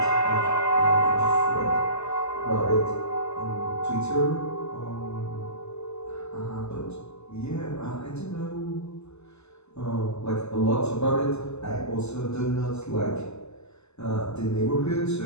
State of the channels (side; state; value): right; late; 0.80 ms